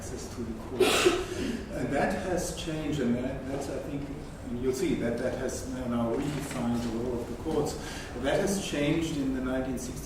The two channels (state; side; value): identical; both; correlation 1.00